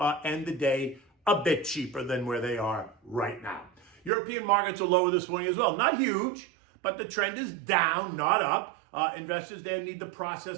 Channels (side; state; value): left; drops out; at 4.1 s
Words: end the day a bit cheaper than where they are right now. European markets are lower this morning as well. Not huge, but the trend is down, not up. Investors there need to